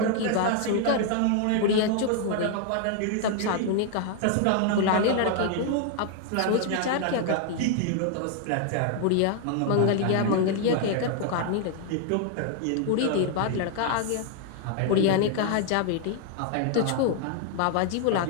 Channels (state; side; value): different; both; correlation 0.00